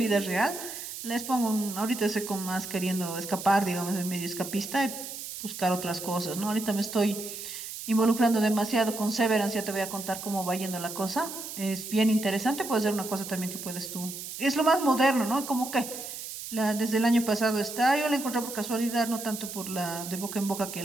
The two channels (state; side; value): noise; right; hiss, 9 dB below the sound